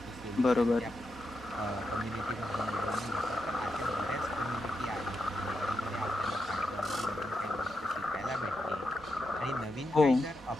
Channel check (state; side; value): normal; both; correlation 0.86